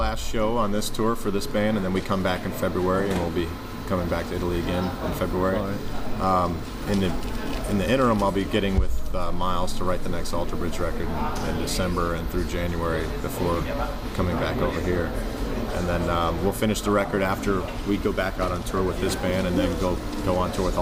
show on this tour for this band, and then we come back in February, and we'll be coming back to Italy again in February. Right. In the interim, I'll be getting with Miles to write the next Alter Bridge record in December and through January before coming back over here. And then we'll finish the record after we go back out on tour with this band, and then go on tour with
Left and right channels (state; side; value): identical; both; correlation 1.00